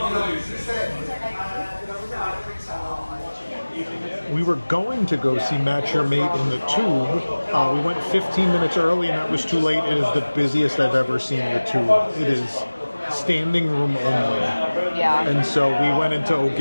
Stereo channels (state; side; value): inverted; both; correlation -1.00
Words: We were going to go see Match Your Mate in the Tube. We went 15 minutes early, and that was too late. It is the busiest I've ever seen the Tube. It is standing room only. Yeah. And so we went into